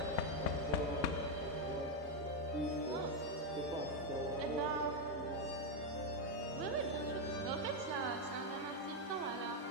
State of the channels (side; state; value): both; normal; correlation 0.04